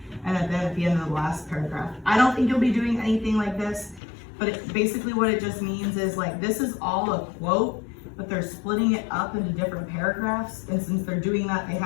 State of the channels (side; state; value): right; drops out; at 4.0 s